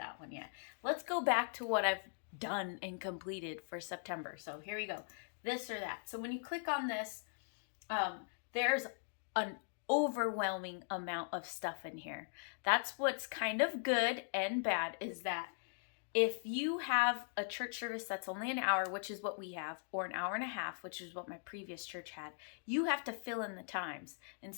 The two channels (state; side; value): silent; right; digital silence